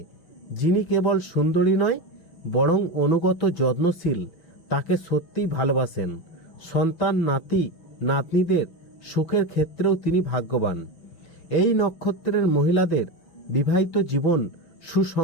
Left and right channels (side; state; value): right; late; 6.0 ms